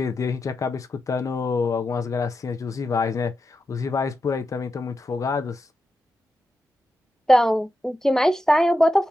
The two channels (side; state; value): both; normal; correlation 0.89